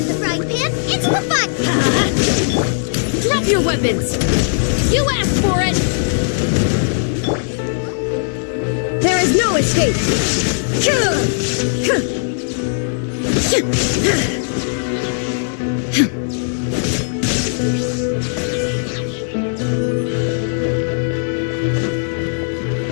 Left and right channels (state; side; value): silent; right; digital silence